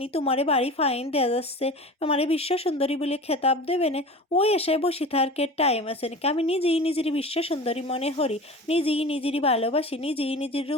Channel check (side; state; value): both; normal; correlation 0.35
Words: তোমারে বাড়ি ফাইন দেওয়া যাচ্ছে, আমারে বিশ্ব সুন্দরী বলে খেতাব দেবে না, ওই আশায় বসে থাকার টাইম আছে নাকি? আমি নিজেই নিজেরই বিশ্ব সুন্দরী মনে করি, নিজেই নিজেরই ভালোবাসি, নিজেই নিজের